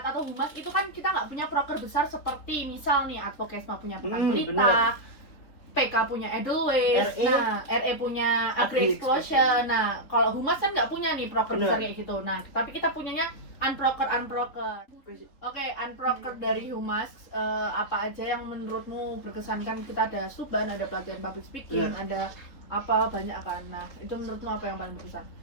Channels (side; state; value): right; late; 3.8 ms